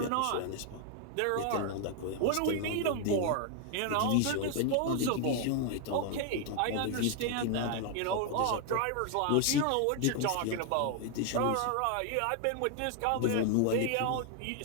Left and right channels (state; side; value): different; both; correlation 0.00